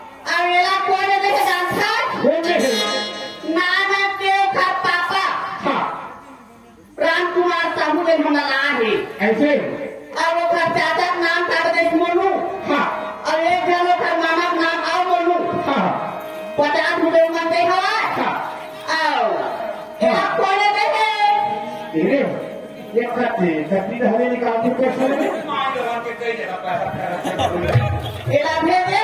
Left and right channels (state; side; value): identical; both; correlation 1.00